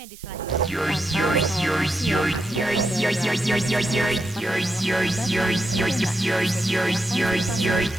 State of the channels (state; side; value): noise; right; hiss, 19 dB below the sound